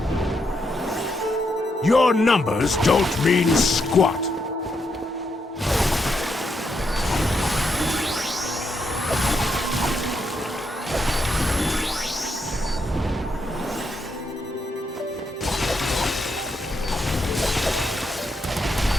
Your numbers don't mean squat.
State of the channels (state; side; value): normal; both; correlation 0.80